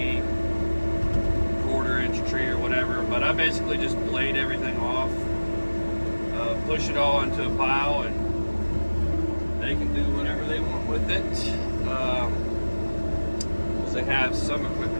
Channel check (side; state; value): both; inverted; correlation -1.00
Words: quarter-inch tree or whatever, but I basically just blade everything off, push it all into a pile, and they can do whatever they want with it. Because they have some